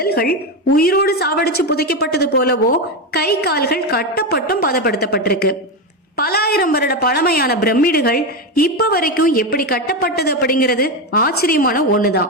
உயிரோடு சாவடிச்சு புதைக்கப்பட்டது போலவோ கை கால்கள் கட்டப்பட்டும் பதப்படுத்தப்பட்டிருக்கு. பல ஆயிரம் வருட பழமையான பிரமிடுகள் இப்ப வரைக்கும் எப்படி கட்டப்பட்டது அப்படிங்கிறது ஆச்சரியமான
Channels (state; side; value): normal; both; correlation 0.13